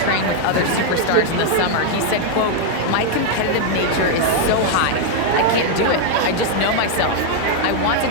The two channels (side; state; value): both; different; correlation 0.00